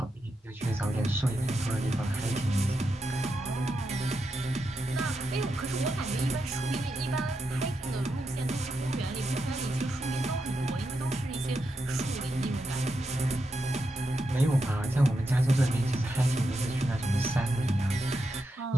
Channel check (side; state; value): both; normal; correlation 0.85